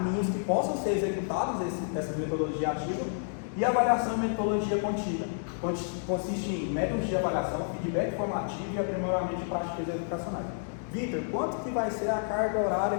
que possam ser executados essa metodologia ativa. E avaliação e metodologia contínua, consiste em métodos de avaliação, feedback formativo e aprimoramento de práticas educacionais. Vitor, quanto que vai ser a carga horária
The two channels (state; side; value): silent; right; digital silence